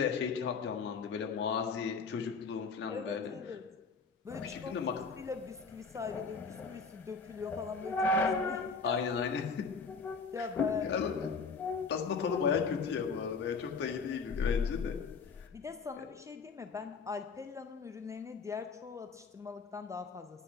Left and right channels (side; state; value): right; quieter; 5.0 dB